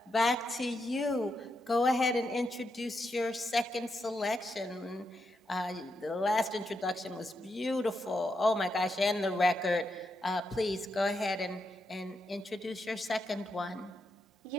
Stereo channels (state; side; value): normal; both; correlation 0.84